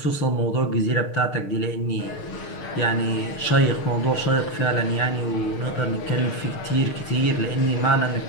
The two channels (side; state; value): right; late; 6.6 ms